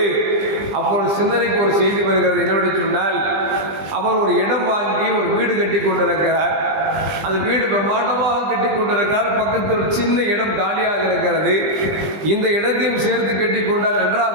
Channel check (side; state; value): left; late; 20 ms